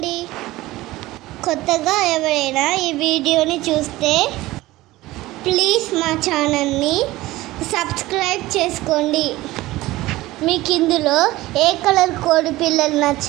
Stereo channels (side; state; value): left; quieter; 18.0 dB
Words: కొత్తగా ఎవరైనా ఈ వీడియోని చూస్తే ప్లీజ్ మా ఛానల్ని సబ్స్క్రైబ్ చేసుకోండి. మీకు ఇందులో ఏ కలర్ కోడి పిల్లలు